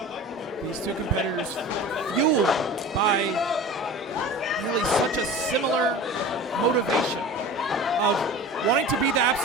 These two competitors fueled by really such a similar motivation of wanting to be the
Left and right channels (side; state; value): both; normal; correlation 0.36